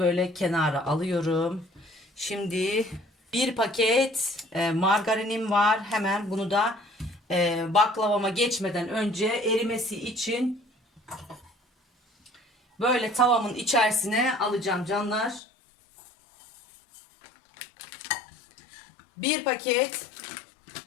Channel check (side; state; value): right; drops out; at 15.4 s